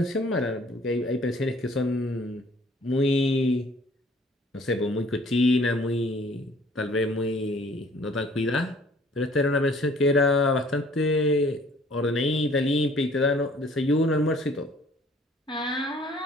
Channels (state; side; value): normal; both; correlation 0.56